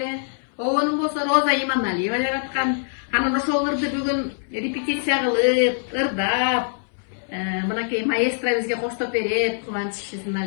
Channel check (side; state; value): right; silent; 62 dB below the other